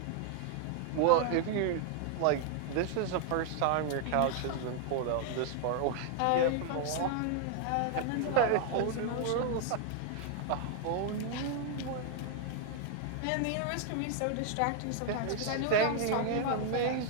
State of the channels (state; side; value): different; both; correlation 0.00